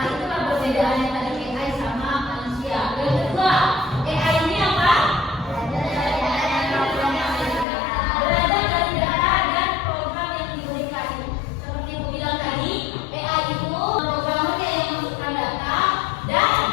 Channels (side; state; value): right; drops out; at 7.7 s